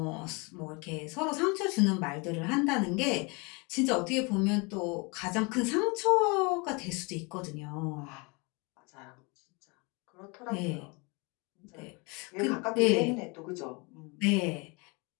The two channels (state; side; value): quieter; right; 29.3 dB